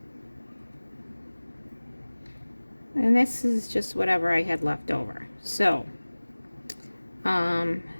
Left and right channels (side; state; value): both; inverted; correlation -1.00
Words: And this is just whatever I had left over. So,